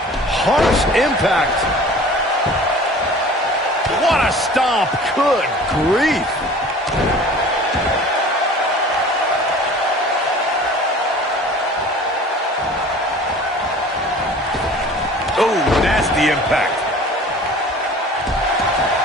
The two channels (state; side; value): normal; both; correlation 0.45